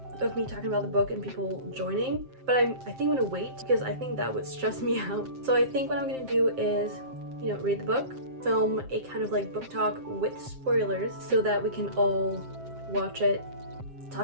of me talking about the book and people joining, but I think I'm gonna wait because I think that would stress me out. So I think what I'm gonna do is, you know, read the book, film a kind of like book talk with spoilers so that we can all watch it,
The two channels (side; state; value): left; late; 7.6 ms